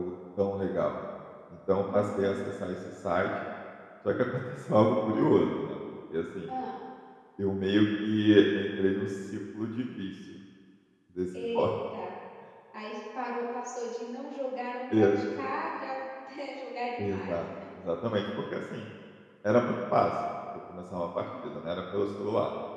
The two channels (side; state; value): both; identical; correlation 1.00